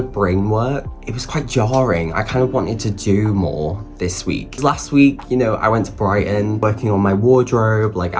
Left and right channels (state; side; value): identical; both; correlation 1.00